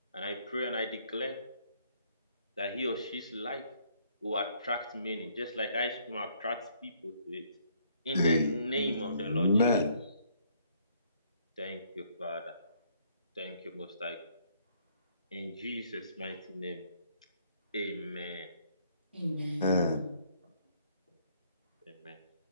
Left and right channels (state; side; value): inverted; both; correlation -0.66